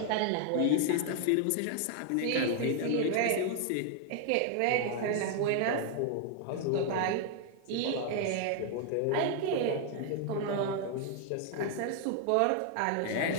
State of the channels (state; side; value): different; both; correlation 0.00